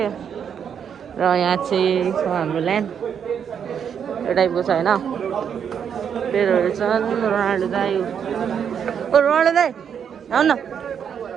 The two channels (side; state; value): left; quieter; 7.8 dB